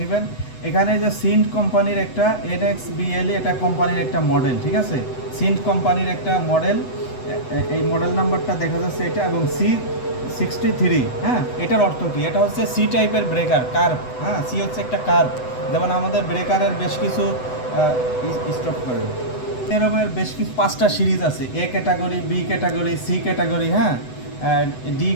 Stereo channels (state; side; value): late; right; 8.0 ms